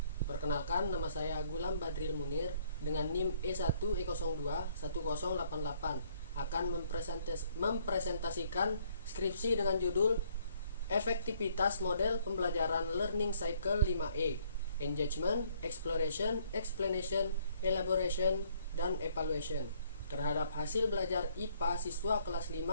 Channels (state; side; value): inverted; both; correlation -0.65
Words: Perkenalkan, nama saya Gulam Badril Munir dengan NIM E1E021088 akan mempresentasikan skripsi dengan judul Efektivitas Model Pembelajaran Learning Cycle 5E, Engagement, Exploration, Explanation, Elaboration, dan Evaluation terhadap hasil belajar IPA siswa kelas